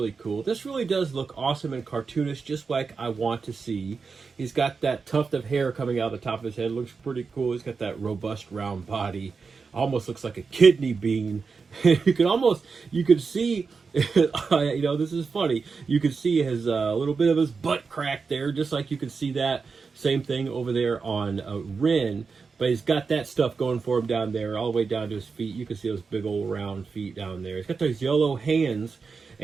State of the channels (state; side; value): quieter; left; 5.0 dB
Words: cool. This really does look awesome and cartoonish, just like I want to see. He's got that tuft of hair coming out of the top of his head. Looks pretty cool. He's got that robust round body. Almost looks like a kidney bean. you could see, this is funny. You could see his little bit of his butt crack there, just like you could see that same thing over there on Ren. But he's got that stuff going for him down there, all the way down to his feet. You can see those big old round feet down there. He's got those yellow hands.